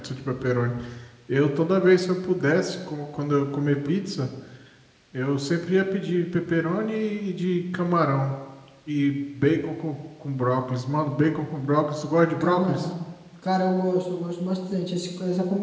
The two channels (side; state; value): both; identical; correlation 1.00